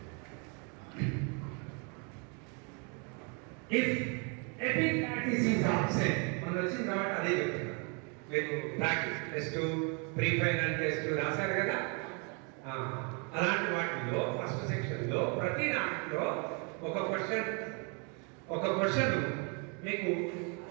If epiglottis is absent, మనం వచ్చిన తర్వాత అదే చెప్తున్నా. మీరు practice test, pre final test రాశారు కదా. అలాంటి వాటిలో ఫస్ట్ సెక్షన్లో ప్రతి దాంట్లో ఒక క్వశ్చన్ మీకు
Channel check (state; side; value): quieter; left; 35.1 dB